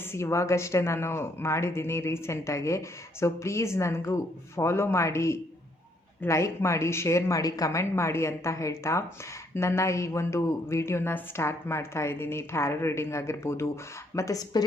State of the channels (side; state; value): both; normal; correlation 0.70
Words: ಇವಾಗಷ್ಟೇ ನಾನು ಮಾಡಿದ್ದೀನಿ ರೀಸೆಂಟಾಗಿ. ಸೊ ಪ್ಲೀಸ್ ನನಗೂ ಫಾಲೋ ಮಾಡಿ, ಲೈಕ್ ಮಾಡಿ, ಶೇರ್ ಮಾಡಿ, ಕಮೆಂಟ್ ಮಾಡಿ ಅಂತ ಹೇಳ್ತಾ ನನ್ನ ಈ ಒಂದು ವಿಡಿಯೋನ ಸ್ಟಾರ್ಟ್ ಮಾಡ್ತಾ ಇದ್ದೀನಿ. ಟ್ಯಾರೋ ರೀಡಿಂಗ್ ಆಗಿರ್ಬೋದು ಮತ್ತು